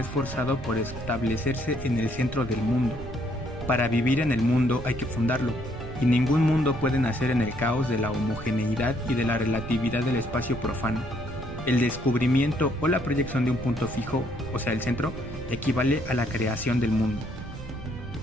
por establecerse en el centro del mundo. Para vivir en el mundo hay que fundarlo, y ningún mundo puede nacer en el caos de la homogeneidad y de la relatividad del espacio profano. El descubrimiento o la proyección de un punto fijo, o sea el centro, equivale a la creación del mundo.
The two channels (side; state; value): right; noise; rumble, 12 dB below the sound